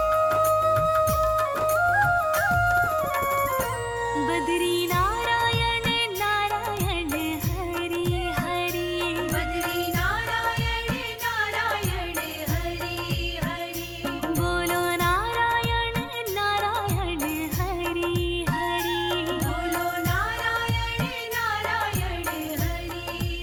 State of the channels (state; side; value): identical; both; correlation 1.00